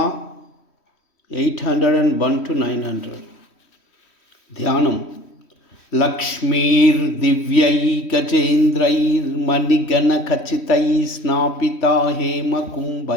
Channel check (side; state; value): right; late; 3.1 ms